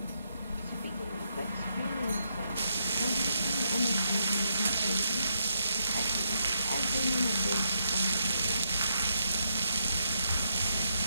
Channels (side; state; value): both; inverted; correlation -0.79